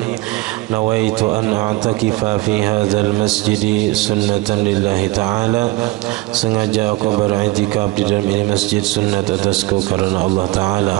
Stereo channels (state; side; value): quieter; left; 19.9 dB